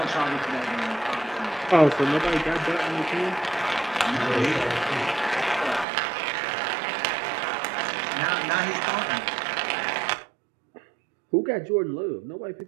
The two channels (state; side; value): drops out; left; at 5.9 s